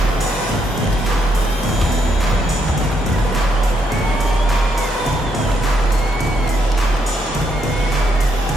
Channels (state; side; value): normal; both; correlation 0.76